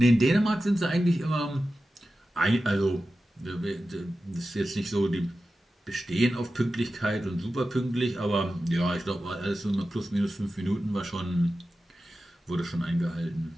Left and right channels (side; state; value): both; normal; correlation 0.93